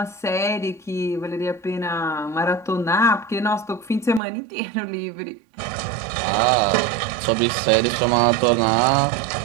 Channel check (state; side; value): drops out; left; at 4.2 s